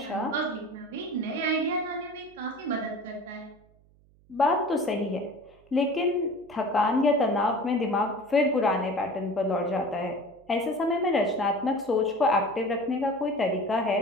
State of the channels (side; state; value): right; noise; hum, 30 dB below the sound